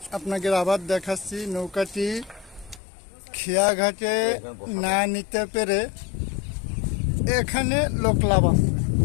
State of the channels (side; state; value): right; drops out; at 2.8 s